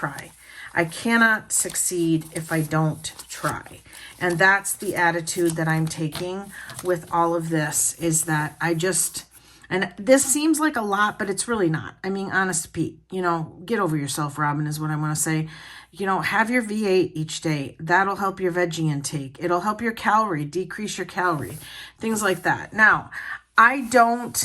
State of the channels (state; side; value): identical; both; correlation 1.00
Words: I cannot succeed if I don't try. And that's the attitude that I'm taking with all of this, is that I just, and this seems like a lot, but it's really not. I mean, honest to Pete, you know, get over yourself, Robin, is what I want to say. You know, have your V8 each day. That'll help your veggie intake. It'll help your calorie, decrease your calorie, things like that. Now, I